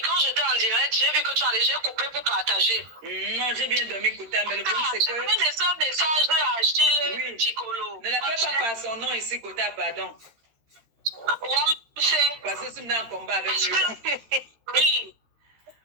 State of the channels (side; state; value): left; late; 13 ms